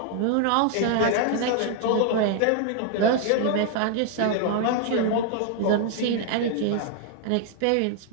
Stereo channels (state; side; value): different; both; correlation 0.00